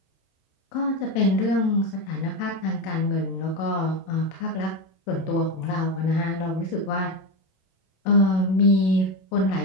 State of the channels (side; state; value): right; late; 27 ms